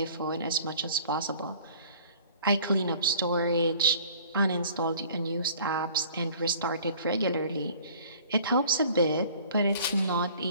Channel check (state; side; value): inverted; both; correlation -0.51